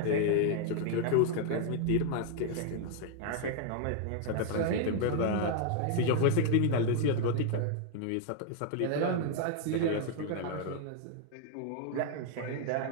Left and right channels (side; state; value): both; different; correlation 0.00